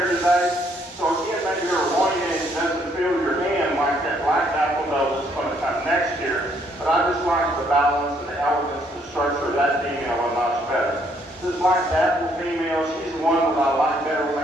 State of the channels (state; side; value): normal; both; correlation 0.69